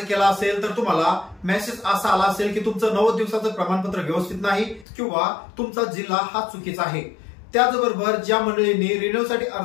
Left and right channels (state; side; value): drops out; right; at 4.9 s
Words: केला असेल तर तुम्हाला मेसेज असा आला असेल की तुमचं 90 दिवसाचं प्रमाणपत्र व्यवस्थित नाही किंवा तुमचा जिल्हा हा चुकीचा आहे। त्याचबरोबर ज्या मंडळींनी रिन्युअलसाठी